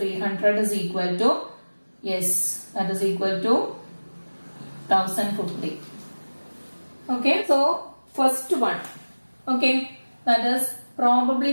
is equal to, yes, that is equal to 1050. Okay, so first one, okay, that is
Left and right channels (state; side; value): inverted; both; correlation -1.00